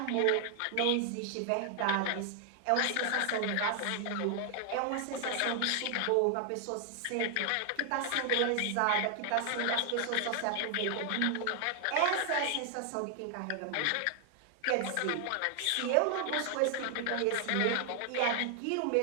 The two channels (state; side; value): different; both; correlation 0.00